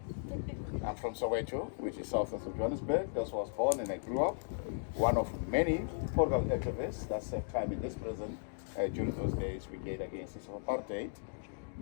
I'm from Soweto, which is south of Johannesburg. That's where I was born and I grew up. One of many political activists that served time in this prison during those days we gave against this apartheid.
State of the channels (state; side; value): silent; right; digital silence